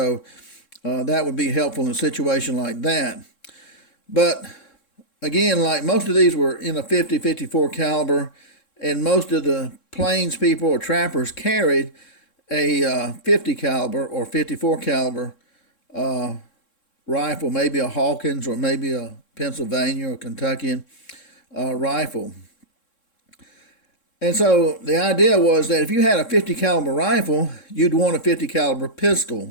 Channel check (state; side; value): late; right; 3.7 ms